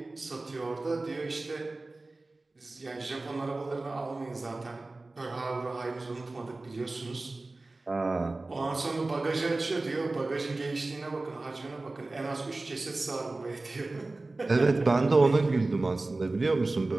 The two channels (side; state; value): left; quieter; 3.2 dB